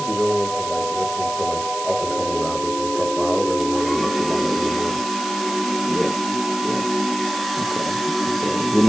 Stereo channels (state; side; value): noise; right; hiss, 9 dB below the sound